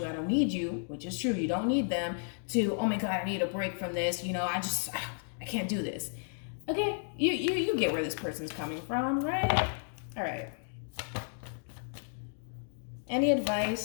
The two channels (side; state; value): right; silent; 56 dB below the other